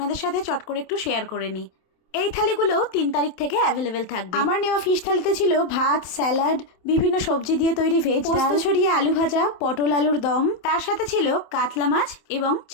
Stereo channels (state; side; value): late; right; 27 ms